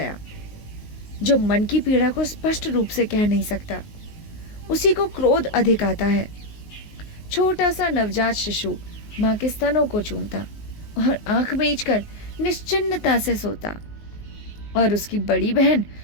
जो मन की पीड़ा को स्पष्ट रूप से कह नहीं सकता, उसी को क्रोध अधिक आता है। छोटा सा नवजात शिशु माँ के स्तनों को चूमता और आंख मीचकर निश्चिन्नता से सोता, और उसकी बड़ी बहन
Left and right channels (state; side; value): late; right; 19 ms